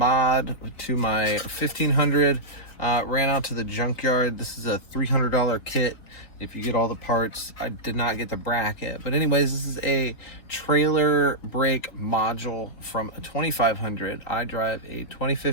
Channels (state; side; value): late; right; 3.9 ms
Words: to my 1500. Ran out to the junkyard. This is a $300 kit if you get all the parts. I did not get the bracket, but anyways, this is a trailer brake module from a 2500. I drive a